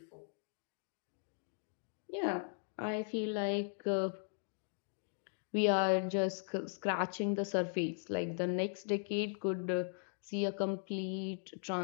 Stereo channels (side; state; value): right; silent; digital silence